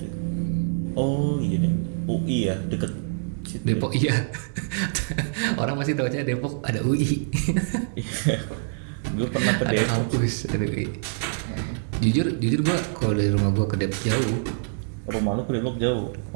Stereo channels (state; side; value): silent; left; digital silence